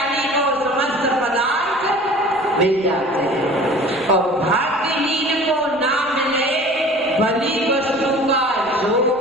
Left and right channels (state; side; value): noise; right; rumble, 29 dB below the sound